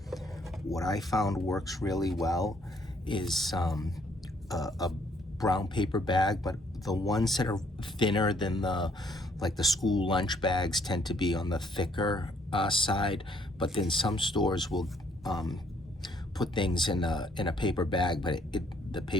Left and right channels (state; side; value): normal; both; correlation 0.66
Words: what I found works really well is a brown paper bag, but the ones that are thinner than the like the school lunch bags tend to be on the thicker side, but then some stores will put things in a paper bag, but the